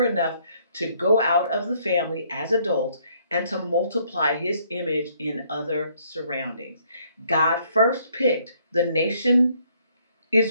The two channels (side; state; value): both; inverted; correlation -0.66